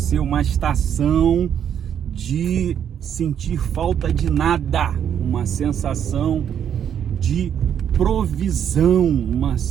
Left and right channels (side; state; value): left; quieter; 9.0 dB